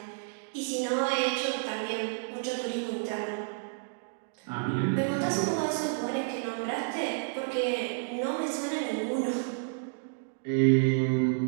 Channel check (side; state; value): left; silent; digital silence